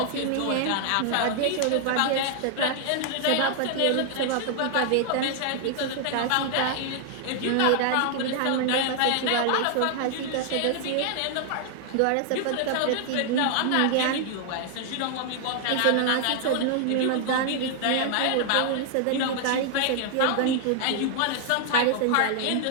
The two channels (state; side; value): different; both; correlation 0.00